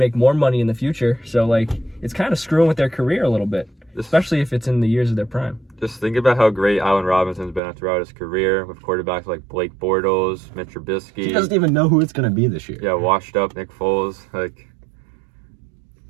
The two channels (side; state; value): left; drops out; at 7.6 s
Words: more money in the future. So, like, it's kind of screwing with their career a little bit, especially if it's in the years of their prime. Just think about how great Allen Robinson's been throughout his career with quarterbacks like Blake Bortles, Mitch Trubisky. He doesn't even know who it's going to be this year. Yeah, washed up Nick Foles. Like,